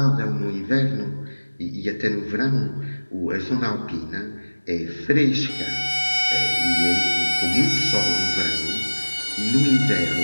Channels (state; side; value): inverted; both; correlation -1.00